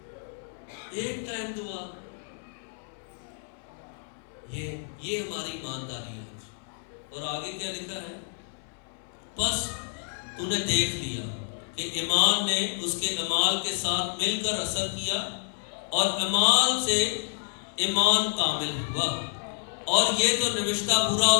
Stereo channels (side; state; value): right; silent; 59 dB below the other